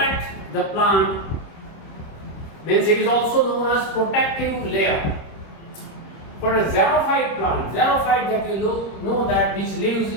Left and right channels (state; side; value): late; right; 26 ms